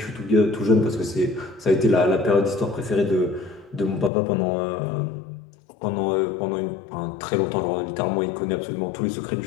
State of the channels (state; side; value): drops out; right; at 4.1 s